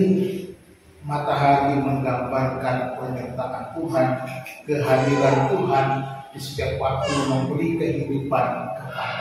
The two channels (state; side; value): identical; both; correlation 1.00